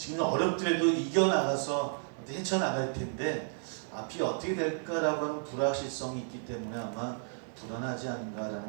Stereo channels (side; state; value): left; silent; digital silence